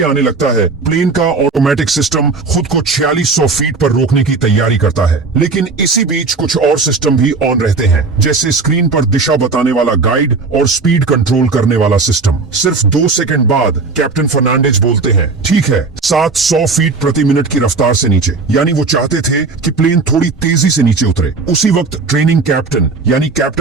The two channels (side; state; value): left; quieter; 4.2 dB